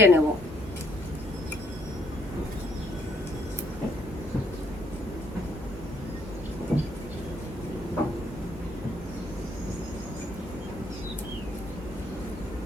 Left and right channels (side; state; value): both; normal; correlation 0.68